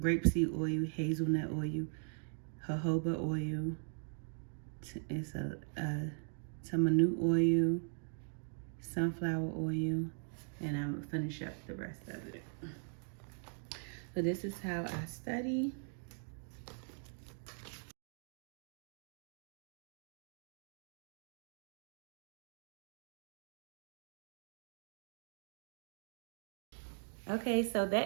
grapeseed oil, hazelnut oil, jojoba oil. It's a tamanu oil, sunflower oil, and I'm gonna finish up the rest of it. So this is how I study. Okay, so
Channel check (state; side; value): silent; left; 51 dB below the other